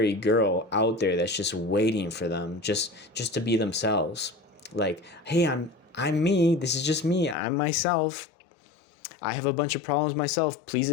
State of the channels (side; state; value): right; drops out; at 7.4 s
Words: girl out there that's just waiting for them just to be themselves. Like, hey, I'm me. This is just me. I'm myself. I have a bunch of problems myself. Please